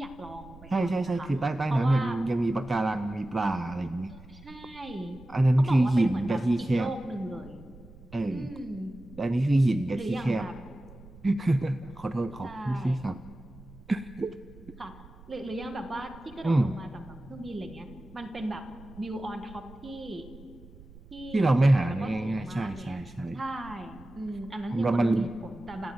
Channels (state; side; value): noise; right; rumble, 20 dB below the sound